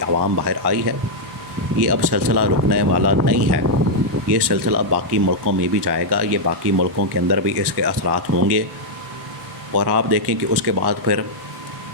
عوام باہر آئی ہے، یہ اب سلسلہ رکنے والا نہیں ہے، یہ سلسلہ باقی ملکوں میں بھی جائے گا، یہ باقی ملکوں کے اندر بھی اس کے اثرات ہوں گے، اور آپ دیکھیں کہ اس کے بعد پھر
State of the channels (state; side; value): late; left; 1.1 ms